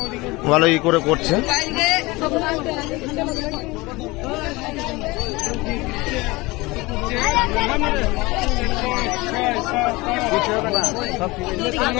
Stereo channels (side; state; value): right; quieter; 22.6 dB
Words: ভালোই করে করছে।